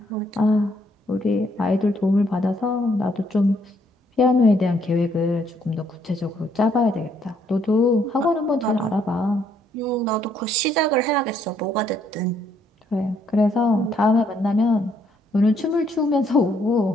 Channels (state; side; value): normal; both; correlation 0.70